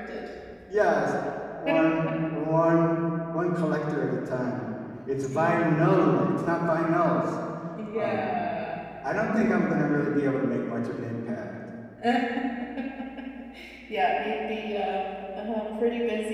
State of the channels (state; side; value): identical; both; correlation 1.00